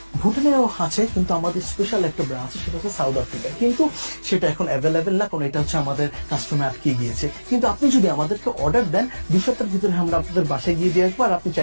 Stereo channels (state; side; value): inverted; both; correlation -1.00